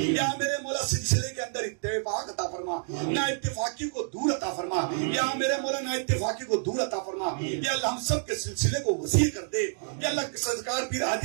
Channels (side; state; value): left; silent; digital silence